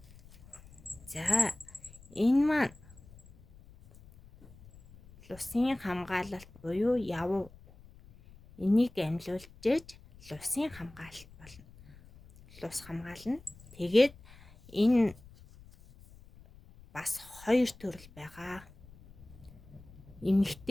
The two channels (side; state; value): left; noise; rumble, 22 dB below the sound